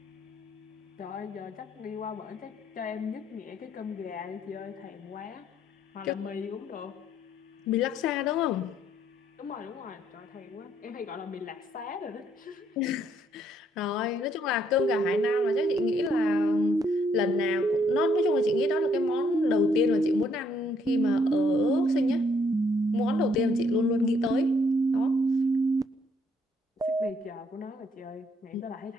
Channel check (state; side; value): normal; both; correlation 0.69